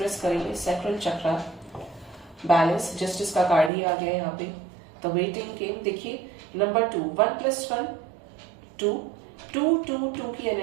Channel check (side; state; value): left; drops out; at 3.7 s